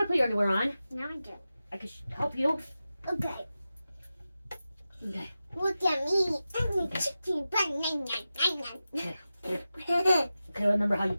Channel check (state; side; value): inverted; both; correlation -0.93